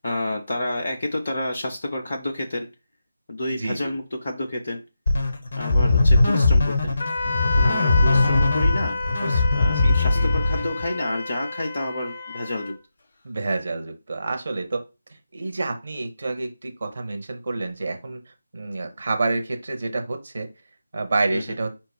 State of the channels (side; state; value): both; inverted; correlation -0.87